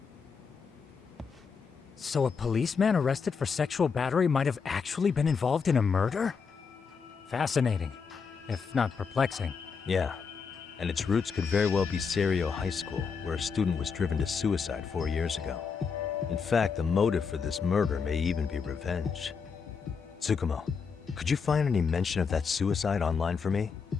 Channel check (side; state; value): right; quieter; 5.7 dB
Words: So a policeman arrested for sexual battery might have actually been involved in a murder? Fascinating, if not perplexing. Yeah. And its roots could very well be Serio High School, where a student was driven to suicide 4 years ago. In fact, the motive for this murder may even be revenge. Tsukumo, could you find any mention of that suicide online for me?